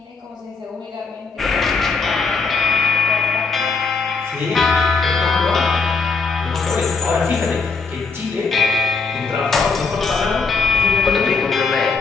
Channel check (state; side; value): quieter; right; 4.6 dB